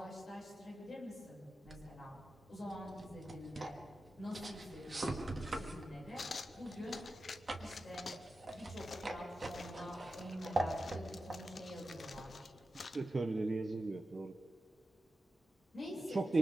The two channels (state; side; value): normal; both; correlation 0.92